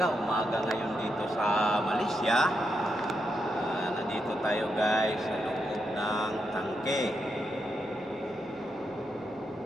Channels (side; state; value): left; noise; rumble, 30 dB below the sound